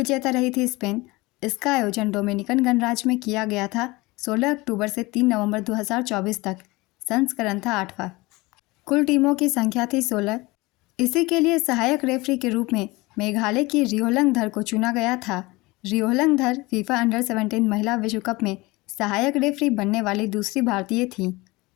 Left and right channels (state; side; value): quieter; right; 22.4 dB